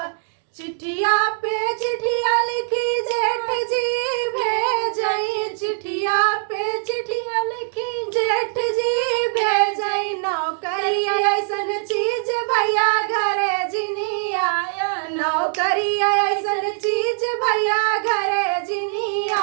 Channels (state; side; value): silent; left; digital silence